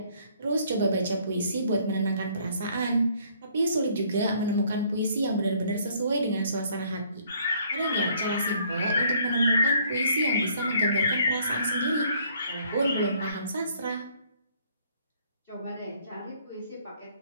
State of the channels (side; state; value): both; inverted; correlation -0.63